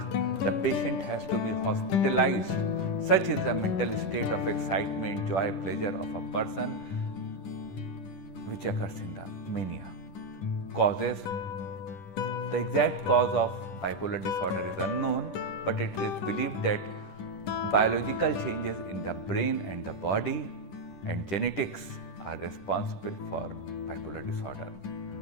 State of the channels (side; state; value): right; late; 10 ms